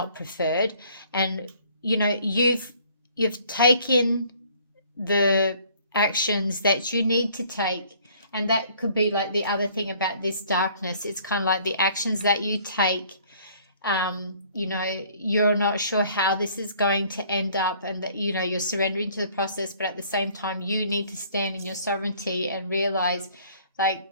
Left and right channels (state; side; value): inverted; both; correlation -0.57